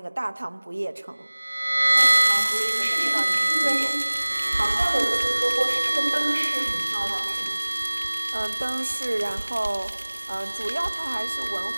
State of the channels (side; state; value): both; inverted; correlation -1.00